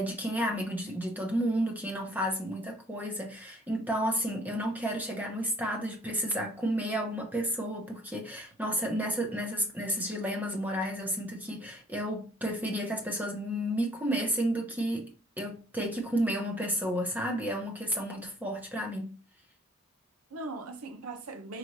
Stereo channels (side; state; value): both; normal; correlation 0.58